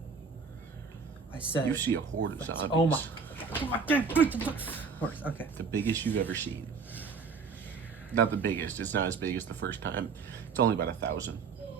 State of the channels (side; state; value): left; quieter; 5.3 dB